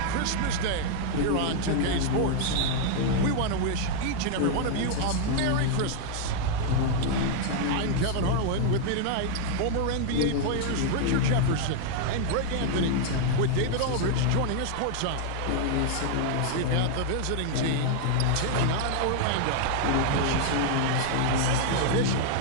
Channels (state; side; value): different; both; correlation 0.00